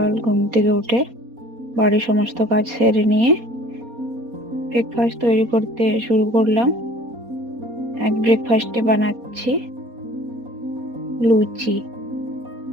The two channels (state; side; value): late; left; 4.2 ms